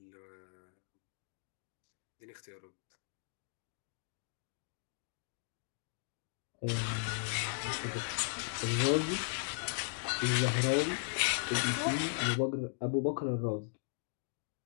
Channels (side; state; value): right; silent; digital silence